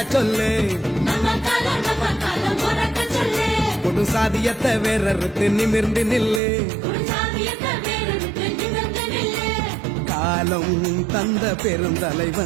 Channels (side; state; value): left; drops out; at 6.4 s